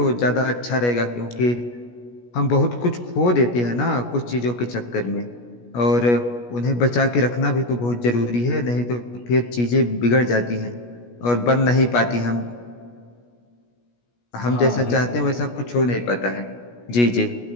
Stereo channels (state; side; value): late; right; 17 ms